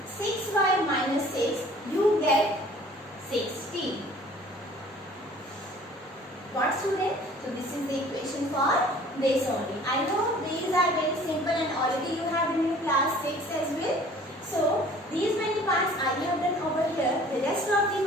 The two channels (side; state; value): both; normal; correlation 0.51